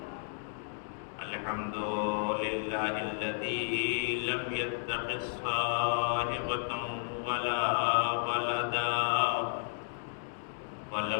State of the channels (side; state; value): right; silent; digital silence